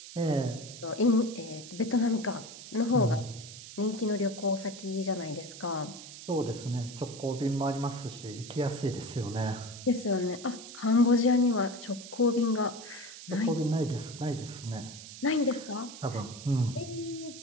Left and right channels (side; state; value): right; noise; hiss, 14 dB below the sound